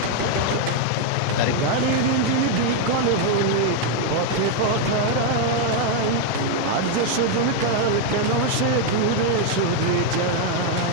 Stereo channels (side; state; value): both; different; correlation 0.01